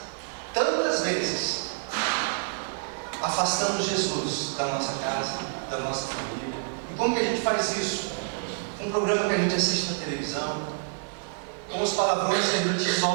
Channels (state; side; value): silent; left; 60 dB below the other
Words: tantas vezes, afastamos Jesus da nossa casa, da nossa família. E como que a gente faz isso? Com um programa que a gente assiste na televisão, com os palavrões que a gente